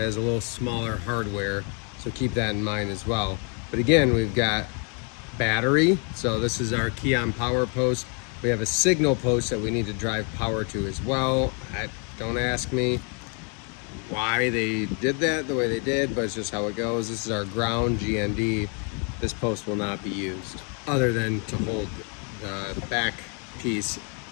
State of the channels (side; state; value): right; quieter; 38.1 dB